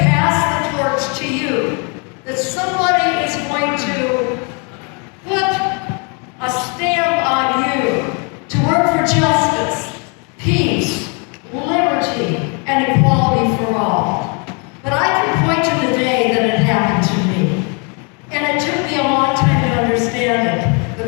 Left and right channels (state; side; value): quieter; right; 35.1 dB